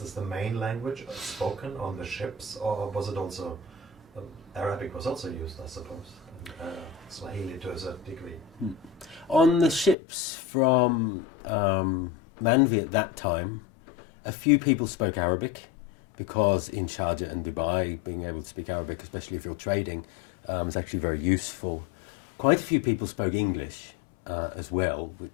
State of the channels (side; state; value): right; drops out; at 10.0 s